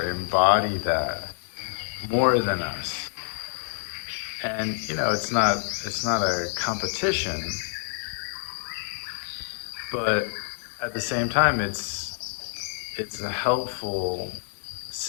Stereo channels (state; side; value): silent; right; 60 dB below the other